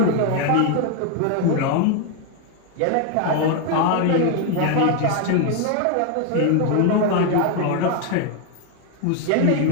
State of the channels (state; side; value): different; both; correlation 0.00